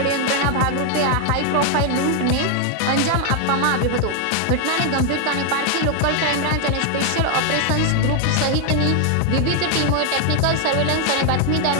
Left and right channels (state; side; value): different; both; correlation 0.00